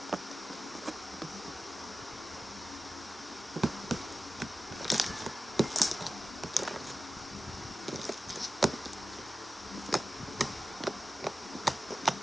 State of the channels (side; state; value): both; normal; correlation 0.93